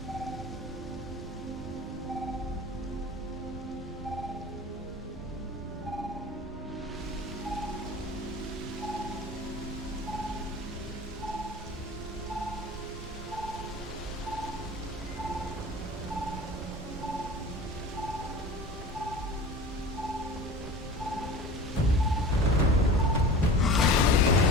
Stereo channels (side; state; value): both; normal; correlation 0.36